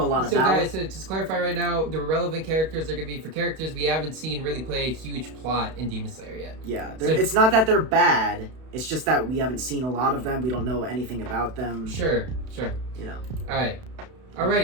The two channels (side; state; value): left; late; 32 ms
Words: lot about. So guys, to just clarify right now, the relevant characters are going to be for characters we haven't seen really play a huge plot in Demon Slayer yet. Yeah, it's not that they're bad, it's just that we haven't seen a lot of them, we don't know anything about them. Sure. You know. Alright.